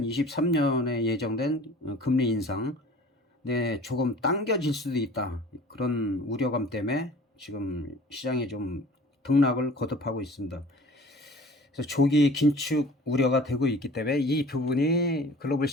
예정된 금리 인상 조금 당겨질 수도 있다, 그런 우려감 때문에 지금 시장에 좀 등락을 거듭하고 있습니다. 그래서 조기 긴축 우려가 되고 있기 때문에 이 부분이 글로벌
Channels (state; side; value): normal; both; correlation 0.45